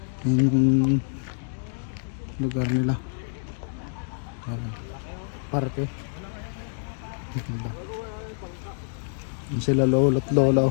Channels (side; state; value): right; silent; digital silence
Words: Yan yung lugar nila. Yan. Parke. Yan sila lolo at